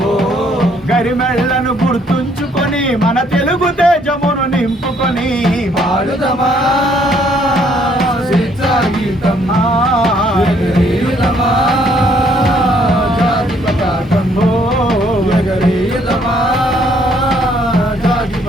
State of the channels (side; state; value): both; normal; correlation 0.66